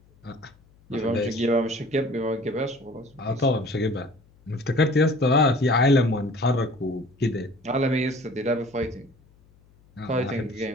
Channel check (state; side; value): noise; left; hum, 30 dB below the sound